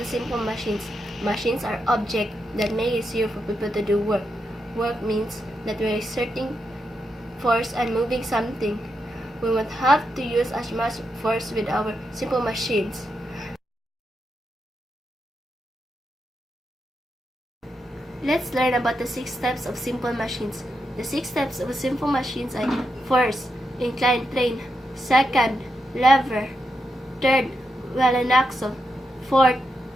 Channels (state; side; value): normal; both; correlation 0.85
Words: simple machines. Machines are objects that make it easier for people to do work. Work means that we are exerting force and moving something. We won't have to use as much force with our simple machines. Let's learn about the 6 types of simple machines. The 6 types of simple machines are: first, inclined plane; second, lever; third, well and axle; fourth,